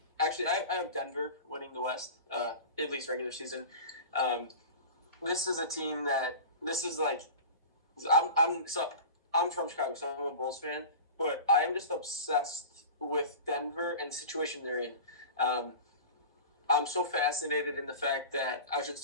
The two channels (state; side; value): inverted; both; correlation -0.34